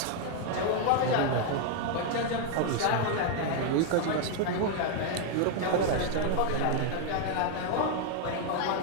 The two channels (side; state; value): both; different; correlation 0.00